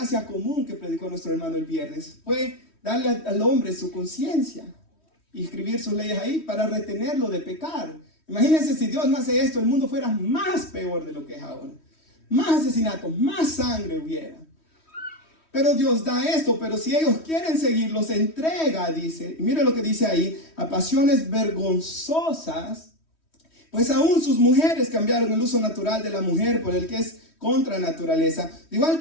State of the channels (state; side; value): late; right; 3.1 ms